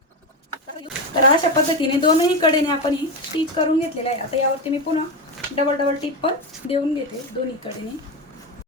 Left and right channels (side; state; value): both; normal; correlation 0.14